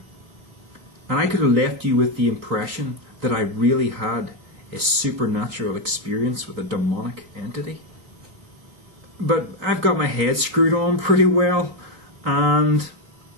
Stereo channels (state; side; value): late; left; 3.8 ms